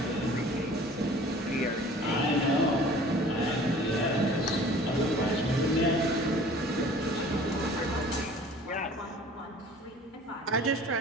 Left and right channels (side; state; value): both; normal; correlation 0.48